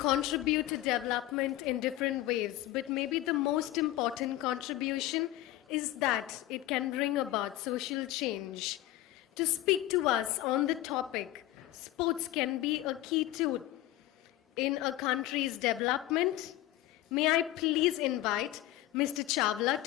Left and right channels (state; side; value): quieter; right; 15.3 dB